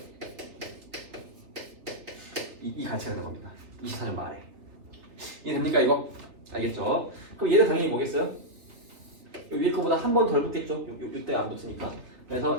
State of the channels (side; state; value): left; late; 3.4 ms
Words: 이 가치가 되는 겁니다. 24년 말에. 이해됩니까 이거? 알겠죠? 그럼 얘는 당연히 뭐겠어요? 위에 거보다 한 번 덜 붙겠죠? 이때 안 붙으니까.